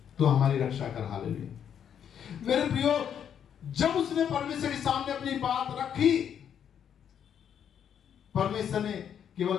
तू हमारी रक्षा कर। हालेलुया। मेरे प्रियो, जब उसने परमेश्वर के सामने अपनी बात रखी, परमेश्वर ने केवल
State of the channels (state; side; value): quieter; right; 8.7 dB